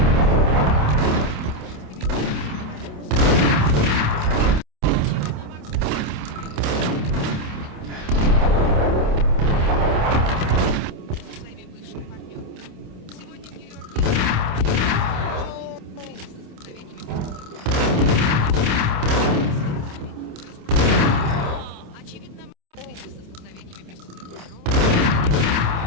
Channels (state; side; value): late; left; 27 ms